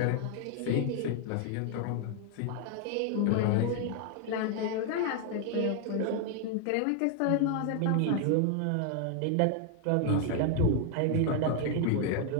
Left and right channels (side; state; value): both; different; correlation 0.00